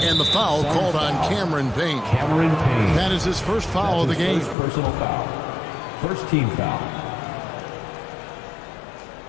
And the foul called on Cameron Payne. Cameron Payne. That is his first foul of the game. First personal foul. First team foul.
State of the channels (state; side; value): drops out; right; at 4.5 s